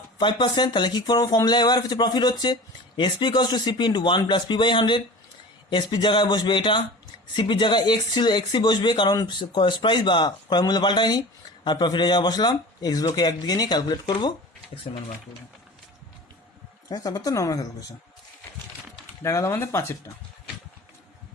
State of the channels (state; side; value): normal; both; correlation 0.37